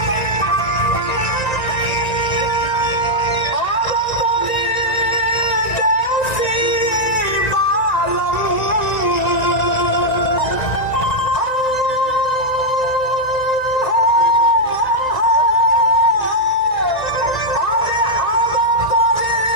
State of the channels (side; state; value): right; late; 1.9 ms